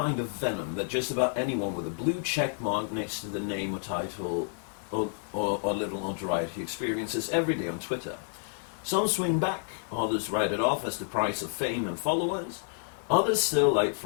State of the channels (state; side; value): silent; right; 58 dB below the other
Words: of venom that just about anyone with a blue check mark next to the name or title or little notoriety experiences every day on Twitter. Some swing back, others write it off as the price of fame and followers, others still, like